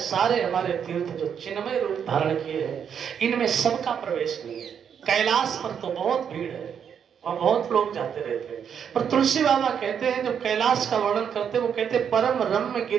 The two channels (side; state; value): left; quieter; 7.8 dB